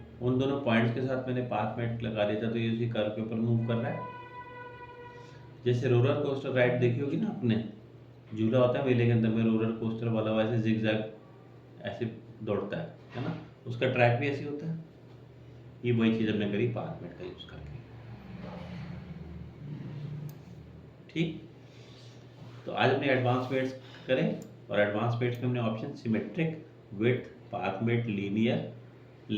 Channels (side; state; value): both; identical; correlation 1.00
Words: उन दोनों पॉइंट्स के साथ मैंने पाथ मेट लगा दिया था, तो ये उसी कर्व के ऊपर मूव कर रहा है। जैसे रोलर कोस्टर राइड देखी होगी ना आपने, झूला होता है मेले के अंदर में रोलर कोस्टर वाला, वैसे जिगजैग ऐसे दौड़ता है ना, उसका ट्रैक भी ऐसे होता है। ये वही चीज़ हमने करी पाथ मेट का यूज़ करके। ठीक, तो आज हमने एडवांस मेट्स करें, और एडवांस मेट्स में हमने option symmetric, width, path mate, linear,